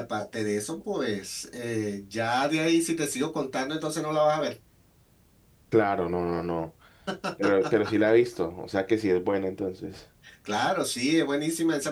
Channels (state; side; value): identical; both; correlation 1.00